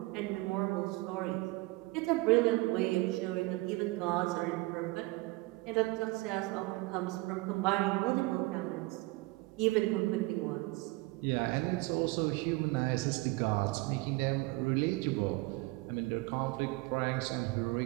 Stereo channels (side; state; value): left; quieter; 22.3 dB